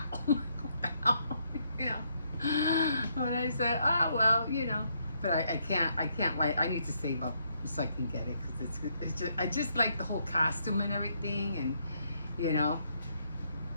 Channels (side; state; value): both; inverted; correlation -0.74